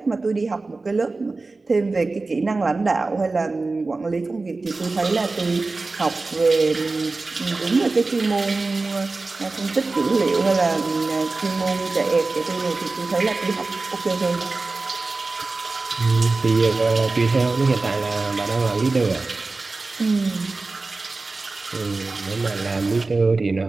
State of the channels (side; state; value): left; quieter; 3.6 dB